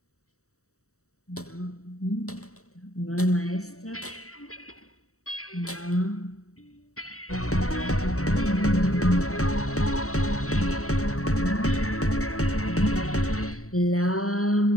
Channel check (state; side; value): late; right; 0.65 ms